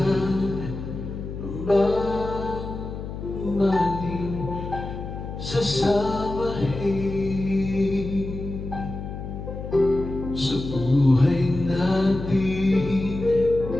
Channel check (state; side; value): noise; left; hum, 8 dB below the sound